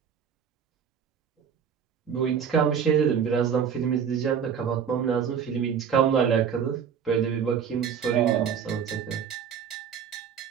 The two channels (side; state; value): left; quieter; 7.5 dB